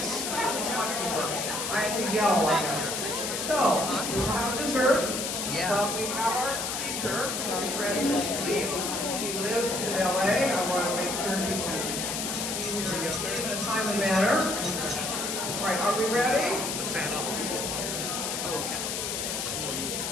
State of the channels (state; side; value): noise; left; hiss, 2 dB below the sound